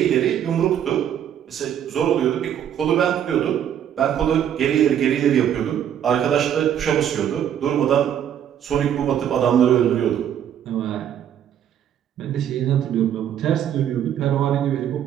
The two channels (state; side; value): quieter; left; 9.7 dB